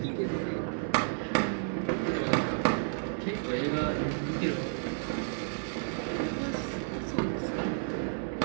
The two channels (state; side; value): silent; left; digital silence